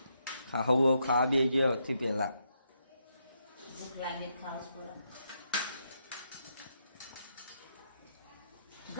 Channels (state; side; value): inverted; both; correlation -0.79